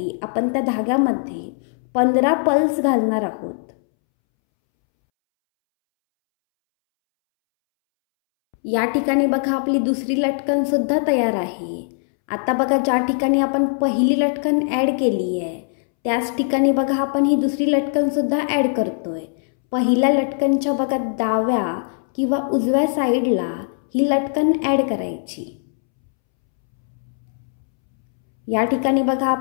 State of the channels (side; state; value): right; silent; 65 dB below the other